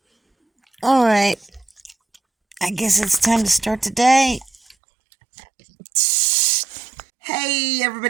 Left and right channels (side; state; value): left; drops out; at 4.8 s